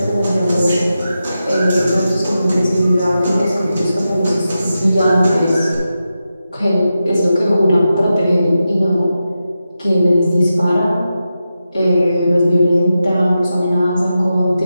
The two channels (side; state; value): both; inverted; correlation -0.90